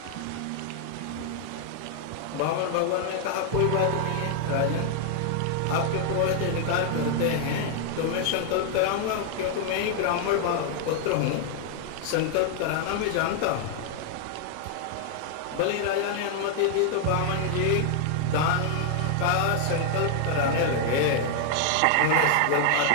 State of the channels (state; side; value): different; both; correlation 0.00